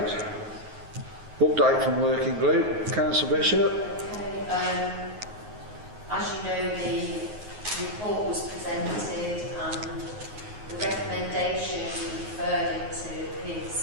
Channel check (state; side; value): late; left; 9.4 ms